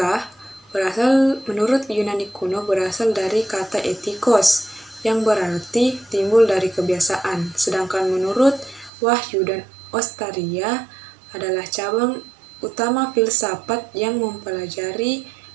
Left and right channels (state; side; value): drops out; left; at 8.9 s